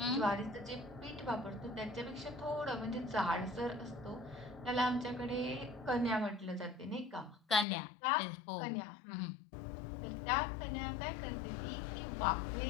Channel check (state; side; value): drops out; right; at 7.7 s